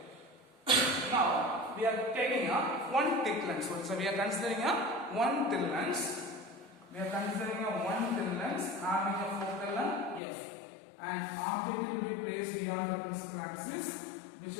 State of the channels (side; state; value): right; drops out; at 10.2 s